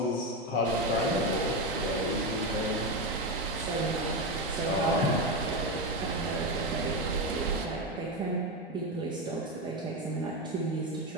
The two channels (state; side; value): normal; both; correlation 0.12